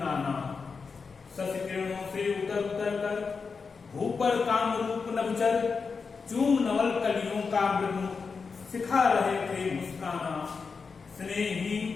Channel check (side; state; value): right; quieter; 5.1 dB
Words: शशि किरणों से उतर उतर कर, भूपर काम रूप नभचर, चूम नवल कलियों का मृदु, सिखा रहे थे मुस्काना।